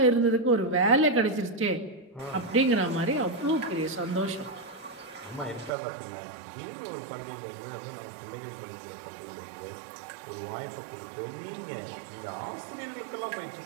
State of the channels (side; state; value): left; drops out; at 5.7 s